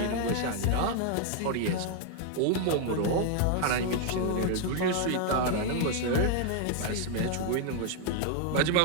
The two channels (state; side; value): different; both; correlation 0.00